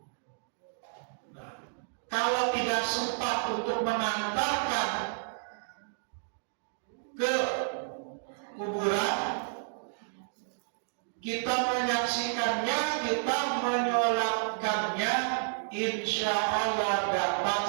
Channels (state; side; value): silent; left; digital silence